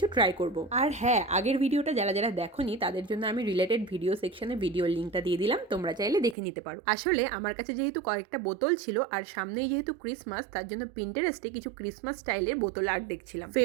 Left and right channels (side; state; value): left; drops out; at 6.4 s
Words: ট্রাই করব। আর হ্যাঁ, আগের ভিডিওটা যারা যারা দেখোনি তাদের জন্য আমি রিলেটেড ভিডিও সেকশনে ভিডিওর লিঙ্কটা দিয়ে দিলাম, তোমরা চাইলে দেখে নিতে পারো। আসলে আমার কাছে যেহেতু কয়েকটা বোতল ছিল আর সামনেই যেহেতু ক্রিসমাস, তার জন্য পিন্টারেস্টে কিছু ক্রিসমাস স্টাইলের বোতল আর্ট দেখছিলাম।